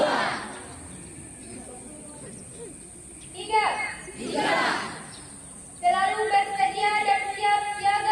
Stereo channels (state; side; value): identical; both; correlation 1.00